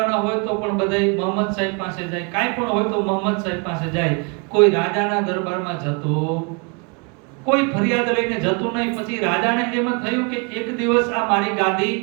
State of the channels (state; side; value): quieter; left; 34.0 dB